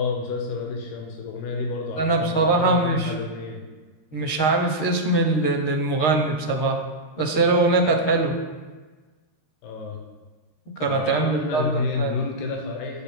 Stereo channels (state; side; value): late; right; 13 ms